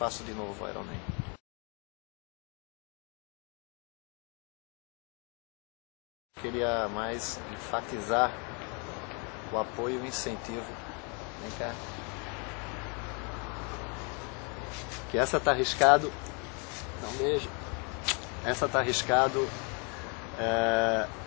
de novo Ironman. Queria mais enfatizar o apoio e o incentivo. Vem cá. Que essa tá arriscado. Dá um beijo. Essa tá arriscado.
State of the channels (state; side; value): quieter; right; 34.6 dB